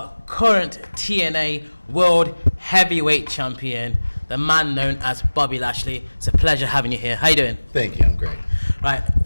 current TNA World Heavyweight Champion, the man known as Bobby Lashley. It's a pleasure having you here. How you doing? Thank you, I'm great. Right,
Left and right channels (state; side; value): inverted; both; correlation -1.00